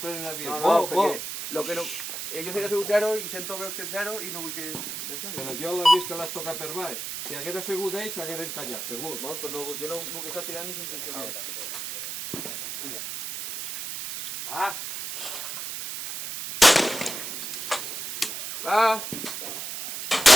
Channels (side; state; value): right; noise; hiss, 6 dB below the sound